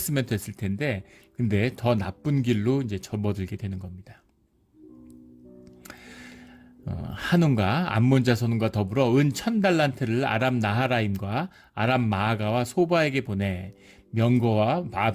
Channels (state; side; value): identical; both; correlation 1.00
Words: 됐을 텐데, 근데 더 나쁜 길로 이제 접어들게 되는 겁니다. 한운과 암몬 자손과 더불어 은 1000달란트를 아람 나하라임과 아람 마아가와 소바에게 보내 명거와